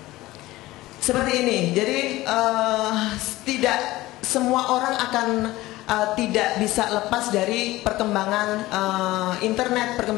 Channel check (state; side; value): quieter; right; 17.9 dB